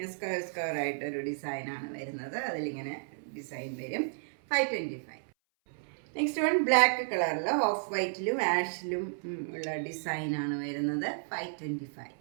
സ്ക്വയർ ആയിട്ടൊരു ഡിസൈനാണ് വരുന്നത്. അതിലിങ്ങനെ ഡിസൈൻ വരും, 525. നെക്സ്റ്റ് വൺ ബ്ലാക്ക് കളറിൽ ഓഫ് വൈറ്റിലും ആഷിലും ഉള്ള ഡിസൈനാണ് വരുന്നത്, 525.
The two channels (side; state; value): left; silent; 56 dB below the other